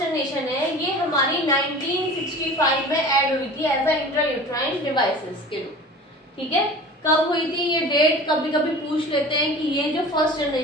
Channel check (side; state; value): both; normal; correlation 0.39